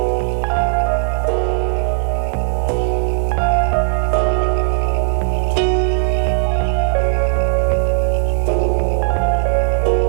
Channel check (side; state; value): left; silent; 57 dB below the other